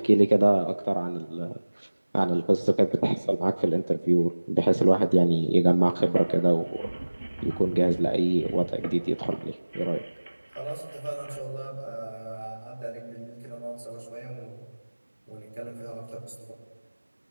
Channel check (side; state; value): both; inverted; correlation -1.00